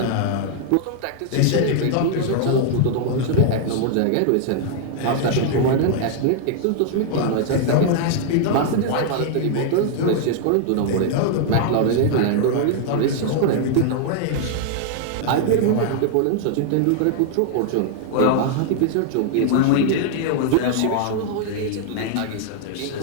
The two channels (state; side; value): different; both; correlation 0.00